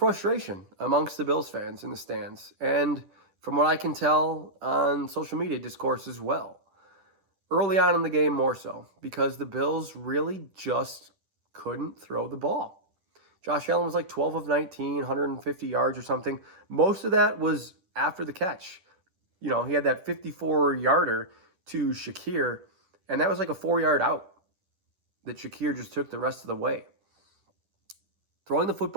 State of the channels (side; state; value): left; late; 10 ms